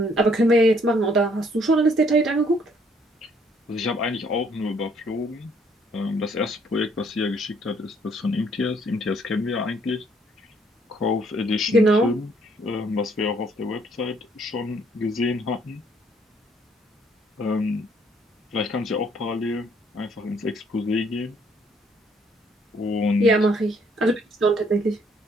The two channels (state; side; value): normal; both; correlation 0.65